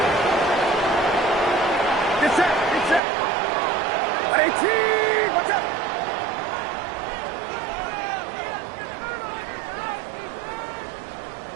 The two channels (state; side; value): drops out; left; at 3.0 s